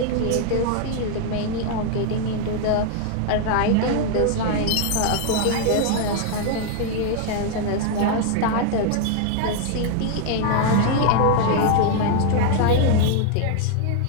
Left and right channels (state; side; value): different; both; correlation 0.00